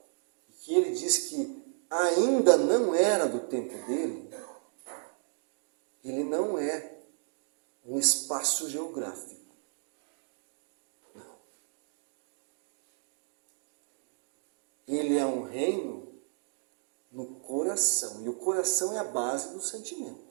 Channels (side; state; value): left; silent; 56 dB below the other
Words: e que ele diz que ainda não era do tempo dele, ele não é um espaço geográfico. Não. Ele é um reino no coração. E o coração é a base do